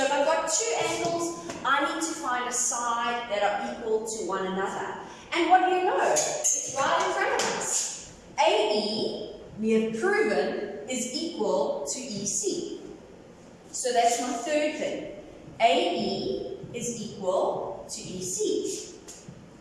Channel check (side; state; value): both; identical; correlation 1.00